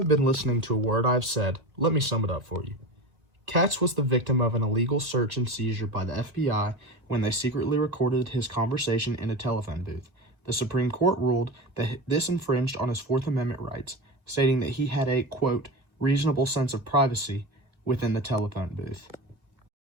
been listening to a word I've said, let me sum it up for you. KATZ was the victim of an illegal search and seizure by the FBI when they secretly recorded his conversation in a telephone booth. The Supreme Court ruled that this infringed on his Fourth Amendment rights, stating that he had a, quote, reasonable sense of privacy within the telephone booth.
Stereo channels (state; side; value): late; left; 2.1 ms